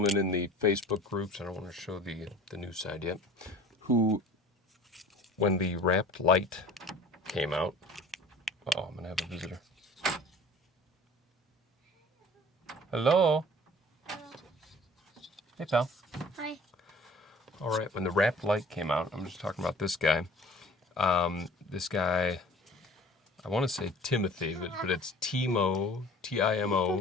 in the Facebook groups, I don't want to show the new side yet, who, when the Rapt Lite came out, I'm going to have a visitor. Hello? Hey pal. Hi. Alright, when the Rapt Lite came out, I'm just talking about this guy. This guy, I want to say Timothy, but it's Timo,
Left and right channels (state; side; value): normal; both; correlation 0.46